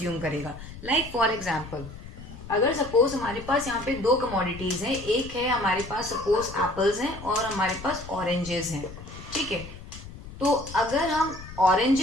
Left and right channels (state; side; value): noise; left; rumble, 14 dB below the sound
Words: करेगा. लाइक फॉर एग्जाम्पल, अगर सपोज हमारे पास यहाँ पे दो कमोडिटीज हैं, एक है हमारे पास सपोज एप्पल्स हैं और हमारे पास ऑरेंजेस हैं. ठीक है, तो अगर हम